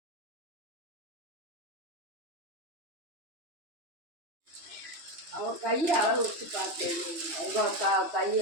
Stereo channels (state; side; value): late; left; 3.1 ms